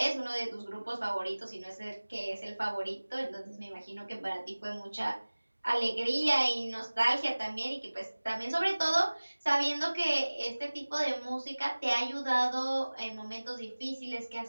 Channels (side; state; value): both; inverted; correlation -1.00